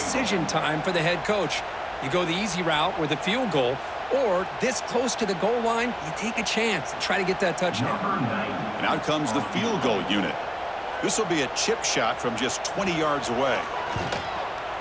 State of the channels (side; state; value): both; identical; correlation 1.00